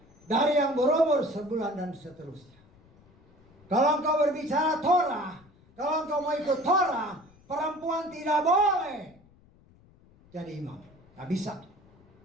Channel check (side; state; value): left; noise; rumble, 28 dB below the sound